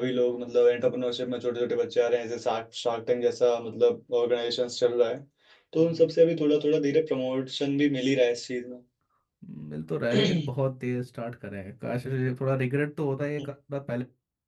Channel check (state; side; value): identical; both; correlation 1.00